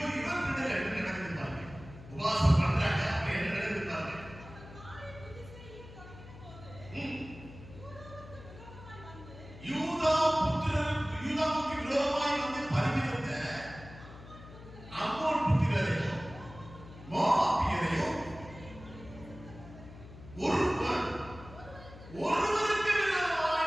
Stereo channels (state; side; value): noise; left; hum, 16 dB below the sound